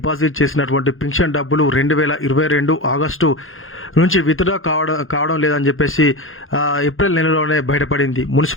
చేసినటువంటి పెన్షన్ డబ్బులు 2022 ఆగస్టు నుంచి విత్డ్రా కావడం లేదని చెప్పేసి ఏప్రిల్ నెలలోనే బయటపడింది.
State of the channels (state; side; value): late; right; 0.60 ms